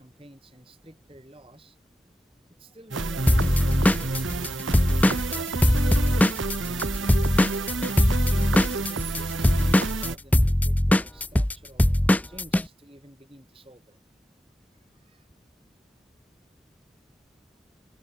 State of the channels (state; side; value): normal; both; correlation 0.90